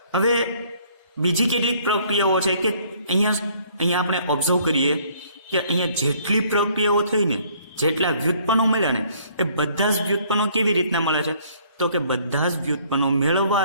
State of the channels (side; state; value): both; inverted; correlation -0.60